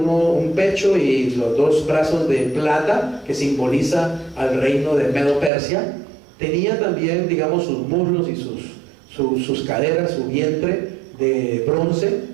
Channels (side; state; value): left; drops out; at 5.5 s